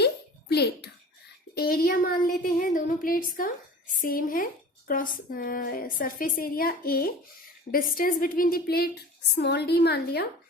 plate. Area मान लेते हैं दोनों प्लेट्स का सेम है, cross surface area A, distance between the plate small d मान लिया,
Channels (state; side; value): normal; both; correlation 0.39